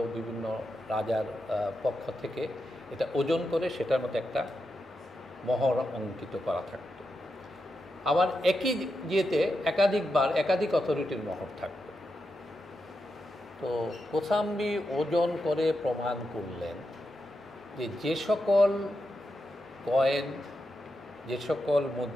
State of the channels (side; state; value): both; normal; correlation 0.87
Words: বিভিন্ন রাজার পক্ষ থেকে এটা ওজন করে সেটার মতো একটা মোহর অঙ্কিত করা থাকত। আবার একই ইয়েতে একাধিক অথরিটির মোহর থাকত। তো কোসাম্বি ওজন করে প্রমাণ করলেন যে সকল কয়েন, যে সকল